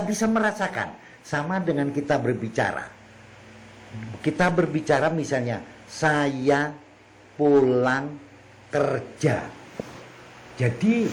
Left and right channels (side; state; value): both; identical; correlation 1.00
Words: bisa merasakan sama dengan kita berbicara. Kita berbicara misalnya saya pulang kerja. Jadi